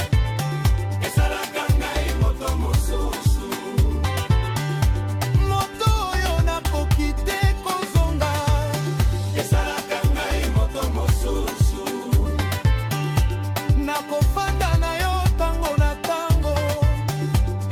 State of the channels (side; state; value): both; identical; correlation 1.00